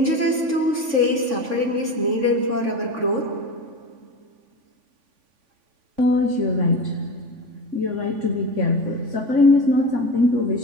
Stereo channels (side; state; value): left; late; 3.5 ms